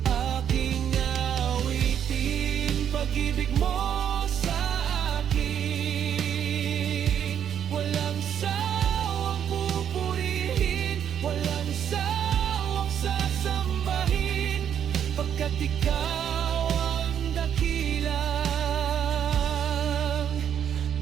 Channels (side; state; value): left; quieter; 9.0 dB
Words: Aking awitin, pag-ibig mo sa akin. Walang sawang pupurihin, walang sawang sasambahin, pagkat ikaw ang dakilang